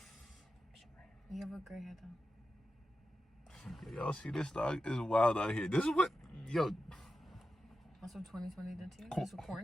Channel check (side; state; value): both; normal; correlation 0.91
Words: You have a gray hair though. Y'all see this dog is wild out here. This is what That's what 2020 did to you? This was